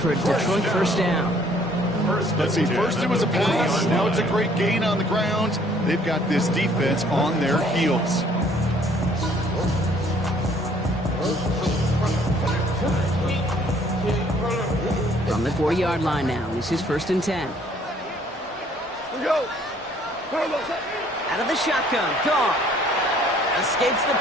a Detroit first down. Let's see, first it was a pass, now it's a great gain on the ground. They've got this defense on their heels. From the 40-yard line now, this is first and 10. Out of the shotgun, Goff escapes the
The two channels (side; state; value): both; normal; correlation 0.60